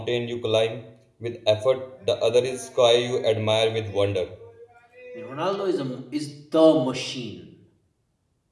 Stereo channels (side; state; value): both; identical; correlation 1.00